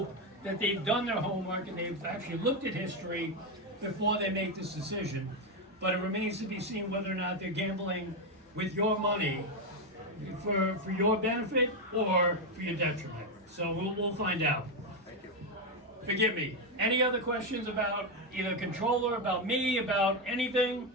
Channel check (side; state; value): both; normal; correlation 0.07